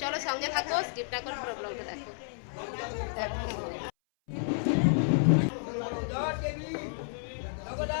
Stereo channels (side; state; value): right; silent; 57 dB below the other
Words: চলো সঙ্গে থাকো, স্কিপ না করে পুরো ব্লগটা দেখো।